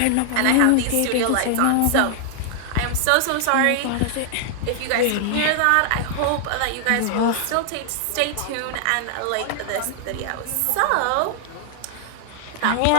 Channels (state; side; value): different; both; correlation 0.00